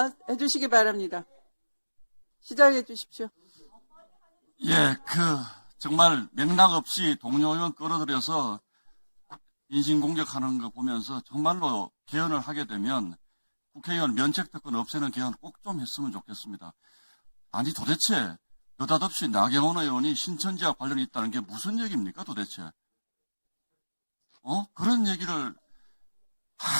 해주시기 바랍니다. 시작해 주십시오. 예, 정말 맥락 없이 동료 의원 끌어들여서 인신공격하는 거 보면서 정말로 개헌을 하게 되면 국회의원 면책특권 없애는 개헌 꼭 좀 했으면 좋겠습니다. 아니 도대체 느닷없이 나경원 의원이 신천지와 관련이 있다는 게 무슨 얘기입니까 도대체? 그런 얘기를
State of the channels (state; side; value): inverted; both; correlation -1.00